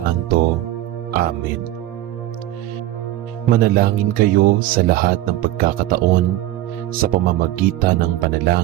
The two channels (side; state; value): left; quieter; 14.9 dB